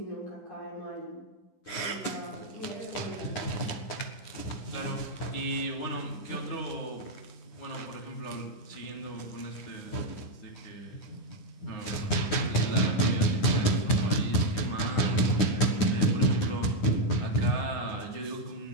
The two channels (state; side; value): late; right; 9.8 ms